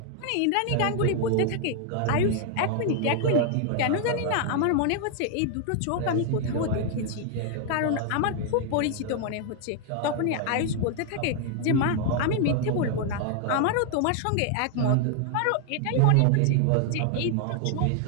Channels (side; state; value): both; different; correlation 0.00